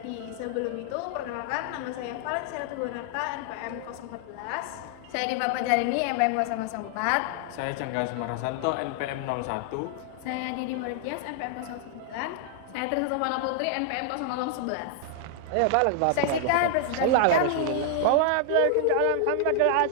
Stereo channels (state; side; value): different; both; correlation 0.00